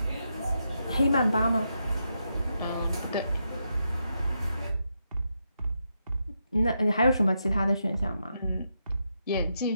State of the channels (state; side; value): inverted; both; correlation -0.83